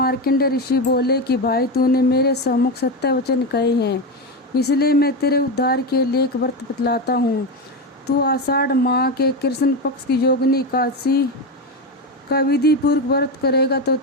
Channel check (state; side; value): normal; both; correlation 0.15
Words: ऋषि बोले कि भाई, तूने मेरे सम्मुख सत्य वचन कहे हैं, इसलिए मैं तेरे उद्धार के लिए एक व्रत बतलाता हूँ। तू आषाढ़ माह के कृष्ण पक्ष की योगिनी एकादशी का विधि पूर्वक व्रत करेगा तो